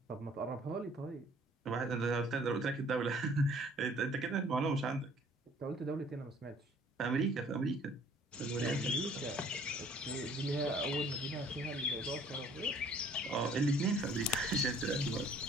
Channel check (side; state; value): both; normal; correlation 0.56